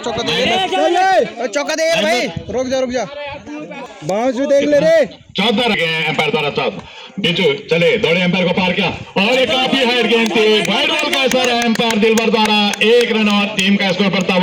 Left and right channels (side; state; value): both; identical; correlation 1.00